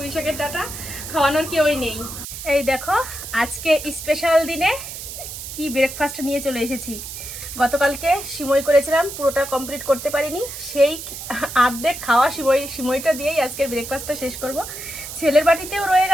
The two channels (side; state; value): right; noise; hiss, 9 dB below the sound